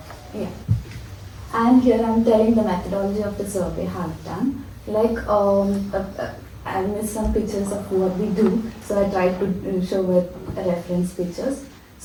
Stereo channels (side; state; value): both; identical; correlation 1.00